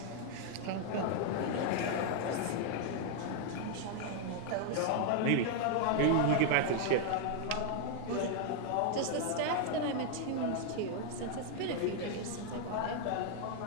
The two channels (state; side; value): different; both; correlation 0.00